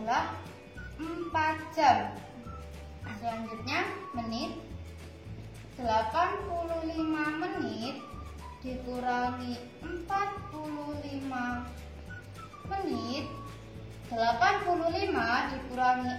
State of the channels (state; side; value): identical; both; correlation 1.00